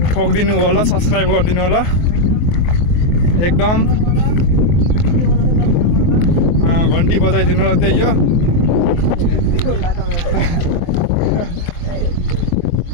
ठोकिदिनु होला, सब्सक्राइब गरिदिनु होला एकदम। घन्टी बजाइदिनु होला त्यही हो।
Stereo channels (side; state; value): right; late; 24 ms